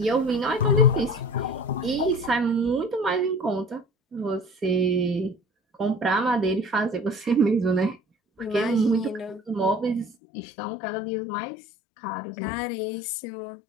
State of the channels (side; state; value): right; drops out; at 10.2 s